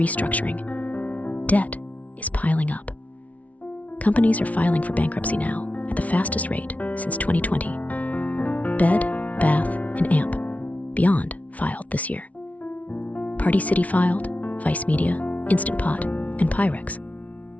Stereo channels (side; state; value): right; late; 0.068 ms